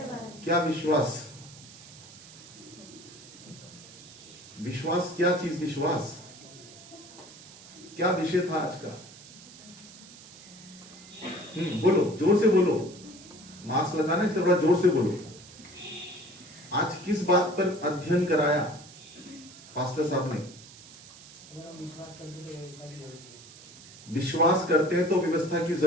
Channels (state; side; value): noise; right; hiss, 19 dB below the sound